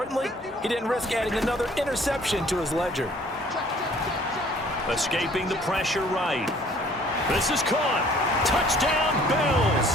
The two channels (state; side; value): normal; both; correlation 0.56